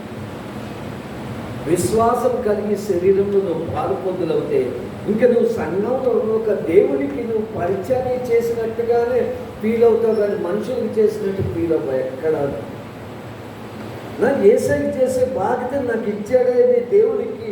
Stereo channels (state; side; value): identical; both; correlation 1.00